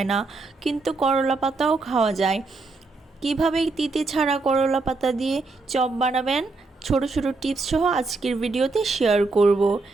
না, কিন্তু করলা পাতাও খাওয়া যায়। কিভাবে তিতে ছাড়া করলা পাতা দিয়ে চপ বানাবেন, ছোট ছোট টিপস সহ আজকের ভিডিওতে শেয়ার করব।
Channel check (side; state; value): left; quieter; 3.6 dB